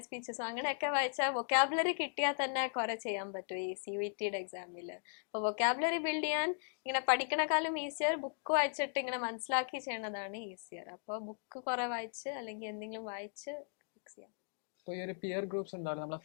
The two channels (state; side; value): silent; right; digital silence